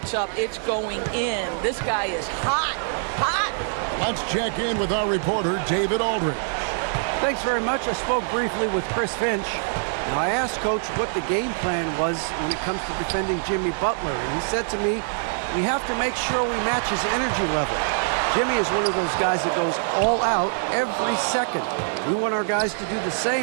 up, it's going in. This guy is hot, hot. Let's check in with our reporter, David Aldridge. Thanks very much. I spoke briefly with Chris Finch. Now, I asked Coach what the game plan was when it comes to defending Jimmy Butler, and he said to me, we have to make sure we match his energy level. Jimmy is one of those guys that goes all out every second. We want our guys to do the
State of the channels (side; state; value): left; silent; digital silence